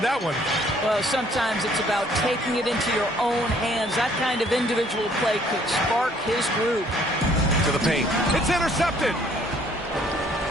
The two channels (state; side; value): normal; both; correlation 0.61